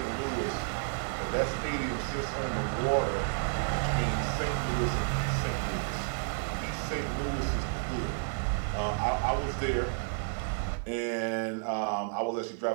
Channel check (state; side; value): silent; left; 57 dB below the other